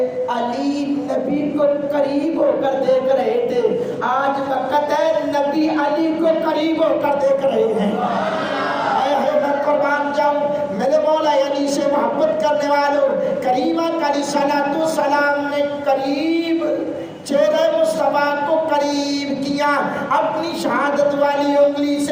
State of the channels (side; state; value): both; identical; correlation 1.00